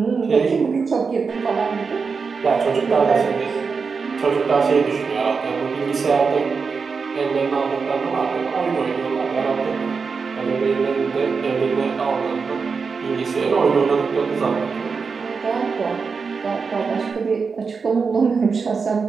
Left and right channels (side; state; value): left; quieter; 5.1 dB